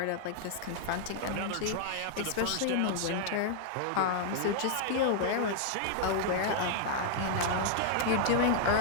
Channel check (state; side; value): different; both; correlation -0.01